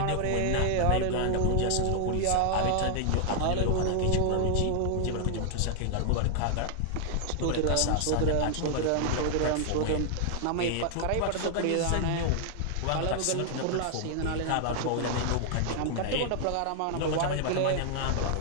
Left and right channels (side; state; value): both; different; correlation 0.00